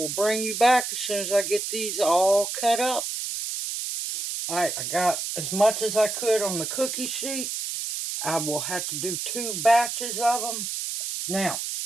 bring you back as soon as I get these all cut up. Alright, I got as much as I could on the cookie sheet. I will have to do 2 batches of them. Now,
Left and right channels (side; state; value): right; noise; hiss, 4 dB below the sound